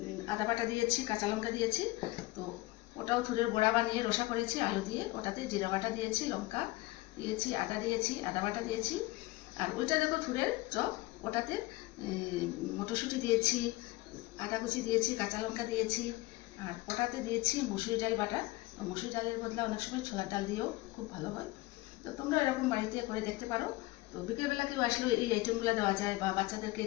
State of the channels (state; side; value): quieter; right; 20.4 dB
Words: আদা বাটা দিয়েছি, কাঁচা লঙ্কা দিয়েছি। তো ওটাও থুরের বড়া বানিয়ে রসা করেছি আলু দিয়ে, ওটাতে জিরা বাটা দিয়েছি, লঙ্কা দিয়েছি, আদা দিয়েছি, আদা বাটা দিয়েছি। আর ওইটা দেখো থুরের চপ, ওটাতে মটরশুঁটি দিয়েছি, আদা কুচি দিয়েছি, কাঁচা লঙ্কা দিয়েছি। আর ওটাতে দিয়েছি মুসুরি ডাল বাটা। মুসুরি ডালের বদলে অনেক সময় ছোলার ডাল দিয়েও খুব ভালো হয়। তো তোমরা এরকম বাড়িতে করে দেখতে পারো। তো বিকেলবেলা কেউ আসলেও এই আইটেমগুলো দেওয়া যায়, বা বাচ্চাদেরকে